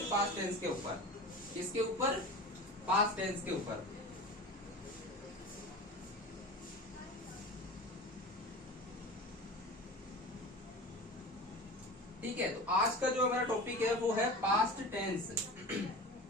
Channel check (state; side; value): normal; both; correlation 0.32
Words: पास्ट टेंस के ऊपर। किसके ऊपर? पास्ट टेंस के ऊपर। ठीक है, तो आज का जो हमारा टॉपिक है वो है पास्ट टेंस।